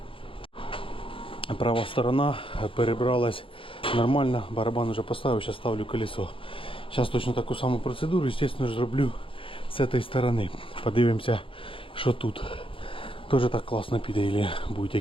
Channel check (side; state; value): right; late; 0.26 ms